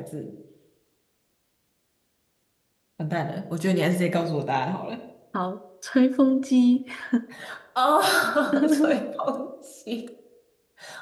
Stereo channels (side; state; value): both; identical; correlation 1.00